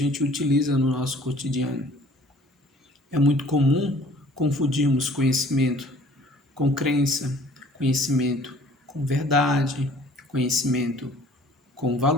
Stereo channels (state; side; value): normal; both; correlation 0.53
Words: utiliza no nosso cotidiano. É muito comum confundirmos conhecimento com crença, conhecimento com verdade, conhecimento com